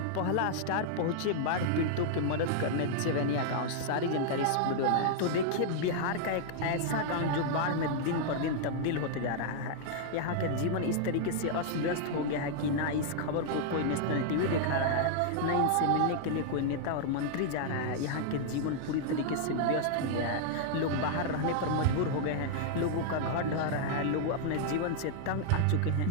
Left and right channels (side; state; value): both; different; correlation -0.01